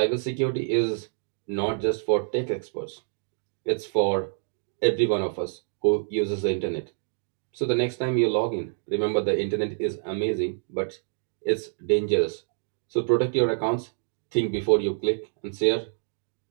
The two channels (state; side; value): silent; left; digital silence